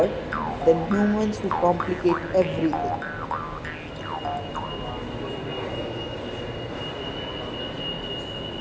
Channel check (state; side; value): identical; both; correlation 1.00